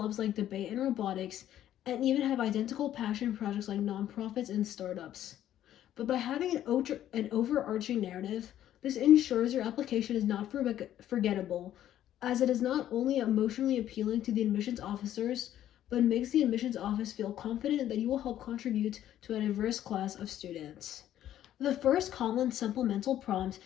like debate and robotics, and even have identical passion projects like nonprofits and startups. But by having an overarching narrative, this ensures your application is not forgettable, as it is not only emotionally appealing to the admissions officers, but makes the admissions office feel confident that you will help contribute to a diverse class of students. The first common supplemental prompt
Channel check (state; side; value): quieter; right; 11.8 dB